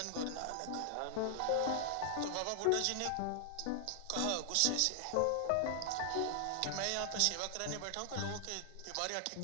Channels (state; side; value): different; both; correlation 0.00